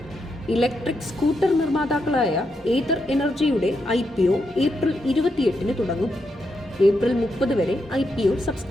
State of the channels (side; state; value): both; normal; correlation 0.83